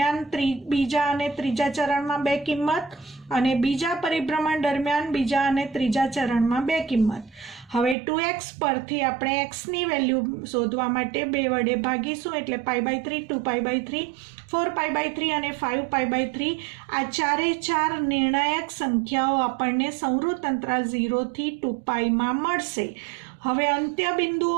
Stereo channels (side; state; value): left; drops out; at 8.0 s